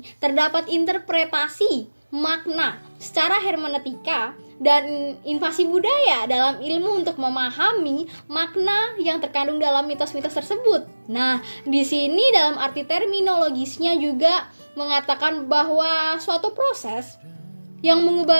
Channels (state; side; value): inverted; both; correlation -1.00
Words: terdapat interpretasi makna secara hermeneutika dan invasi budaya dalam ilmu untuk memahami makna yang terkandung dalam mitos-mitos tersebut. Nah, di sini dalam arti terminologisnya juga mengatakan bahwa suatu proses yang